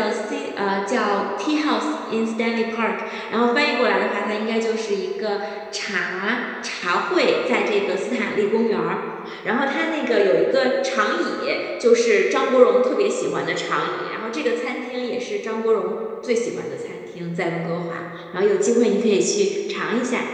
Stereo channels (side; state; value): both; identical; correlation 1.00